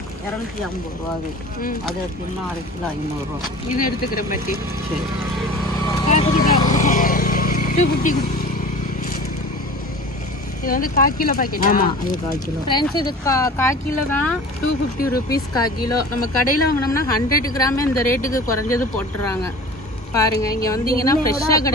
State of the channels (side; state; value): both; normal; correlation 0.40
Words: 250 ரூபா. அது எடுத்தீங்கன்னா 1/2 கிலோ 500 ரூபா. இது எடுத்துக்கிறேன் பாட்டி. சரி. 250. இது வந்து 1/4 கிலோ பாக்கெட். ஆமாம், இது 1/4 கிலோ. ஃப்ரெண்ட்ஸ், இது 1/4 கிலோ தான் 250 rupees 1/4 கிலோ. நம்ம கடையில் வாங்கினோம்னா 100 கிராமே இந்த ரேட்டுக்கு குறைஞ்சது போட்டுறாங்க. பாருங்க, இங்கே வந்தீங்கன்னா ஃப்ரெஷ்ஷாக